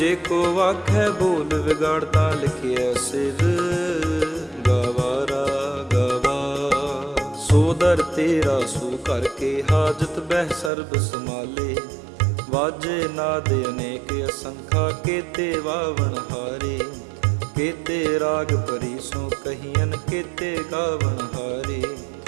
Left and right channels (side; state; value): left; drops out; at 10.7 s